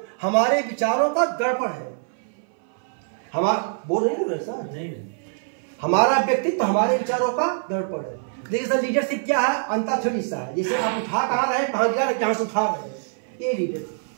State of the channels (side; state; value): left; silent; 57 dB below the other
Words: हमारे विचारों का दर्पण है। हमारा बोल रहे सर, नहीं, हमारा व्यक्तित्व हमारे विचारों का दर्पण है। देखिए सर, लीडरशिप क्या है, अंताक्षरी सा है। जैसे आप उठा कहाँ रहे, कहाँ गिरा रहे, कहाँ से उठा रहे, ये लीडरशिप।